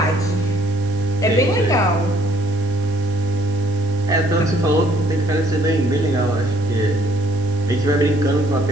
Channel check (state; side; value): noise; right; hiss, 25 dB below the sound